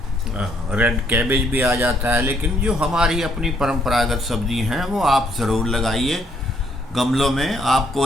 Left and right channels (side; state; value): both; normal; correlation 0.69